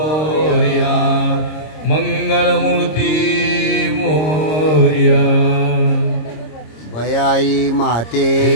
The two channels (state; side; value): late; right; 26 ms